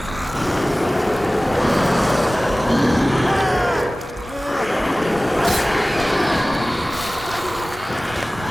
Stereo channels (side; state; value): both; normal; correlation 0.98